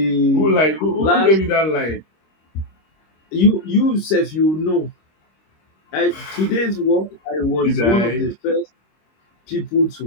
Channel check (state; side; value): late; right; 26 ms